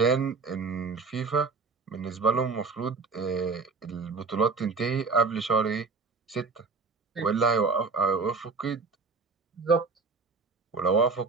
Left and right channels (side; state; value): left; quieter; 4.4 dB